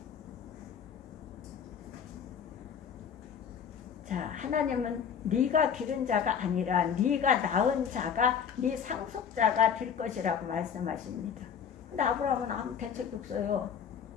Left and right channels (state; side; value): quieter; right; 7.6 dB